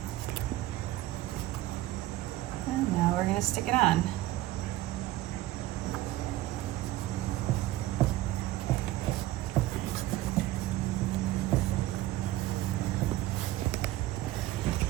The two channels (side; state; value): left; quieter; 15.9 dB